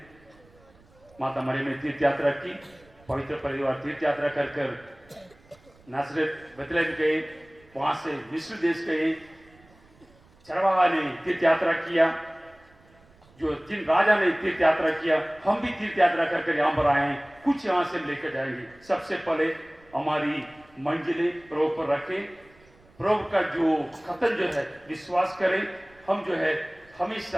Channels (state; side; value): noise; right; rumble, 29 dB below the sound